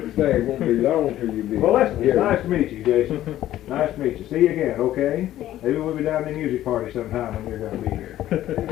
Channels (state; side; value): quieter; right; 13.4 dB